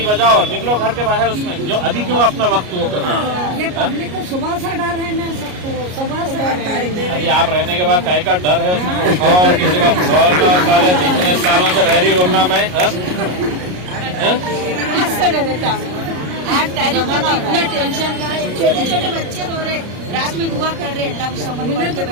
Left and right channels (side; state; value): left; late; 33 ms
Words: बजाओ और निकलो घर के बाहर। उसमें जो अभी क्यों अपना वक्त वो कर रहे हैं? ये पब्लिक को सुबह से डर है ना, सबको सुबह से डर। अभी आप रहने के बाद काय का डर है उसमें? और किसी का बोलना साले इतने सालों से रह रही बोलना मैं आज तारीख में तो इतना टेंशन का है, छोटे छोटे बच्चे रो रहे, रात में दुआ कर रहे, अल्लाह उस समझ में तो